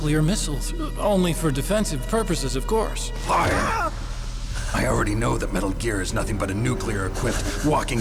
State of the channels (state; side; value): identical; both; correlation 1.00